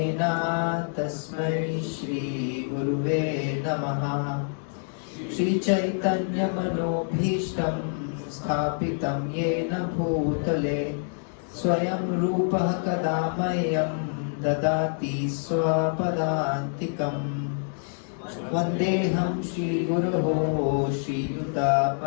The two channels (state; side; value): silent; right; digital silence